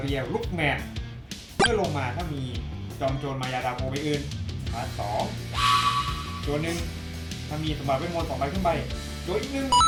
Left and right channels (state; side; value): identical; both; correlation 1.00